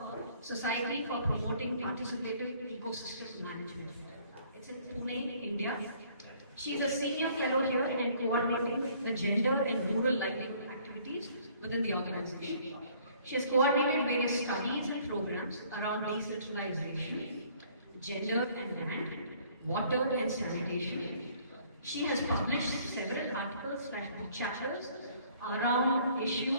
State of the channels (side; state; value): both; inverted; correlation -0.59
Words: Society for Promoting Participative Ecosystem Management. It's in Pune, India. She is a senior fellow here and coordinating the gender and rural livelihood activities within the organization. She has coordinated various studies and programs around decentralization, gender and land, water and sanitation. She has published several articles/book chapters around